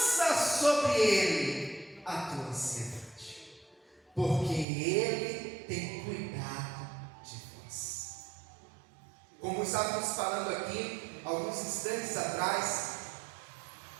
sobre ele a tua ansiedade, porque ele tem cuidado de vós. Como estávamos falando aqui alguns instantes atrás,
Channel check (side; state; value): left; drops out; at 4.7 s